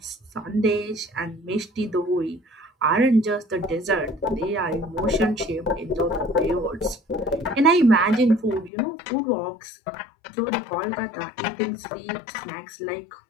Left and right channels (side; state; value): right; drops out; at 8.7 s